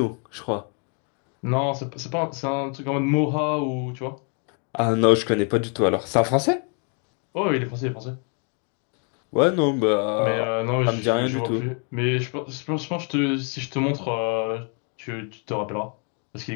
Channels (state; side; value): quieter; right; 39.4 dB